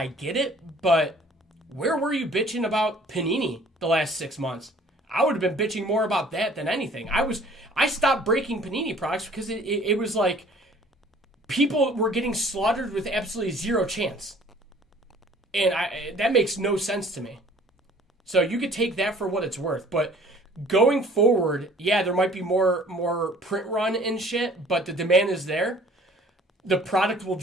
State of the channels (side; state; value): both; normal; correlation 0.53